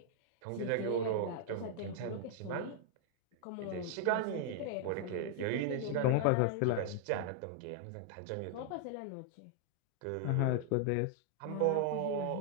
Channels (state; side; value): different; both; correlation 0.00